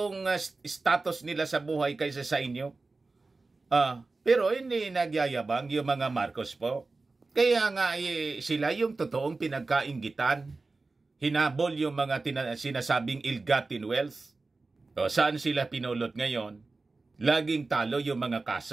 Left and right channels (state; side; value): quieter; left; 3.6 dB